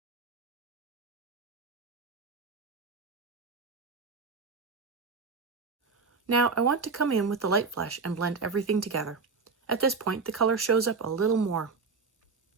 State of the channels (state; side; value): quieter; left; 4.8 dB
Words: Now I want to come in with the light flesh and blend everything together. At this point, the color shows up a little more.